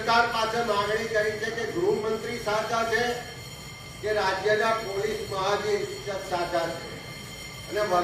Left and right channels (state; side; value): identical; both; correlation 1.00